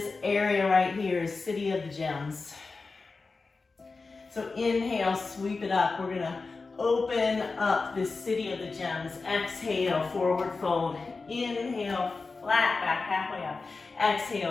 area right here is city of the gems. So inhale, sweep it up. We're gonna open up this city of the gems. Exhale, forward fold. Inhale, flat back, halfway up.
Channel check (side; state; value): right; quieter; 4.1 dB